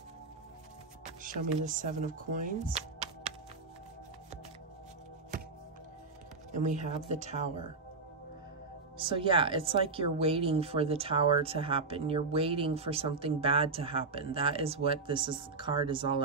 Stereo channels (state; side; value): quieter; left; 4.0 dB